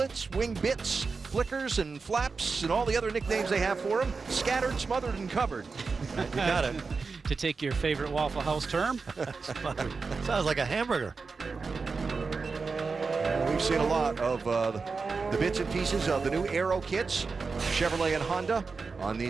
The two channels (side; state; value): left; quieter; 4.6 dB